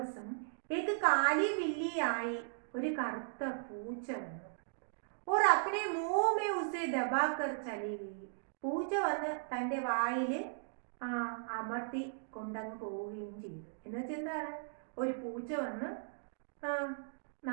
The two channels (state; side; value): silent; left; digital silence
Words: കാലി ബില്ലിയായി ഒരു കറുത്ത പൂച്ച വന്നു. और अपने मुंह में उसे दबाकर चली गई. പൂച്ച വന്ന് തൻ്റെ വായിൽ അമർത്തി കൊണ്ടങ്ങ് പോവുകയും ചെയ്തു. എന്നുവെച്ചാൽ എന്താണ്? ഒരു പൂച്ച വന്ന്